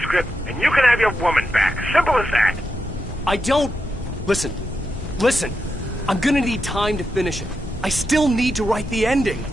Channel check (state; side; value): normal; both; correlation 0.86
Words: and you can have your woman back. Simple as that. I don't... Listen. Listen. I'm gonna need time to finish it. I still need to write the ending.